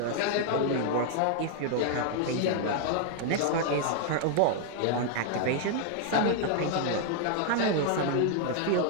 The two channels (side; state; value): both; different; correlation 0.00